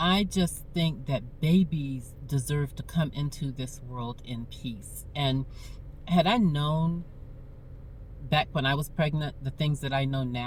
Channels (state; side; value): identical; both; correlation 1.00